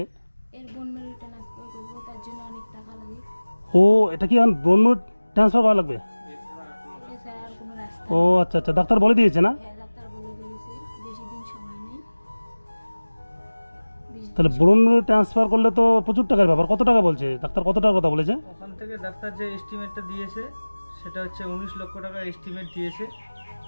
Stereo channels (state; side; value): inverted; both; correlation -1.00